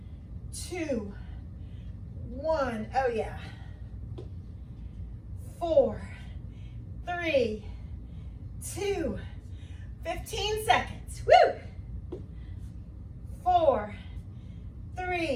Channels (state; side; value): identical; both; correlation 1.00